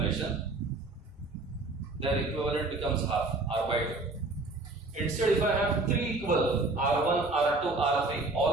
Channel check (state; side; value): quieter; left; 3.3 dB